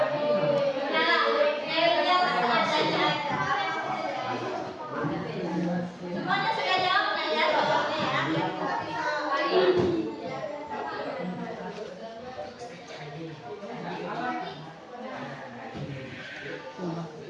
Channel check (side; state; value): both; identical; correlation 1.00